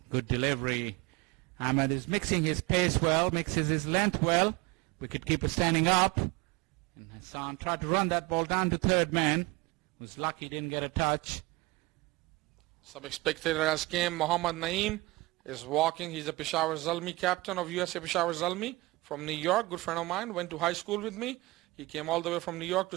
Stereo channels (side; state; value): left; quieter; 22.1 dB